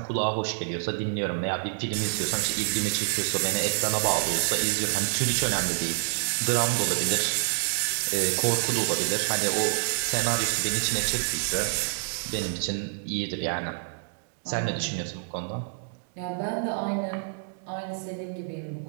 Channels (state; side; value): silent; left; digital silence